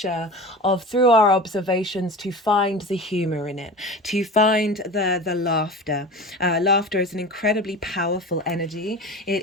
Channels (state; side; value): normal; both; correlation 0.33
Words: of, through our observations, to find the humor in it, to find the laughter. Laughter is an incredibly powerful energy.